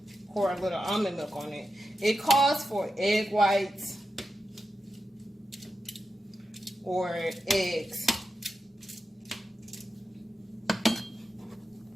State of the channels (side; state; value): both; normal; correlation 0.89